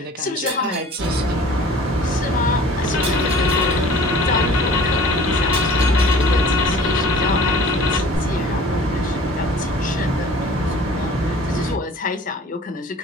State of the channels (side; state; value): both; normal; correlation 0.47